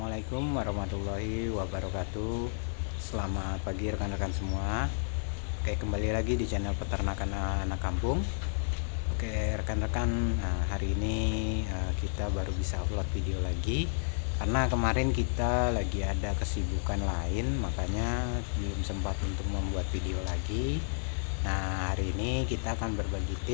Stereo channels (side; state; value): right; silent; digital silence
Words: warahmatullahi wabarakatuh. Selamat pagi rekan-rekan semua. Oke, kembali lagi di channel Peternakan Anak Kampung. Oke, rekan-rekan, hari ini kita baru bisa upload video lagi karena kemarin kita lagi ada kesibukan lain, makanya belum sempat untuk membuat video lagi. Nah, hari ini kita akan berbagi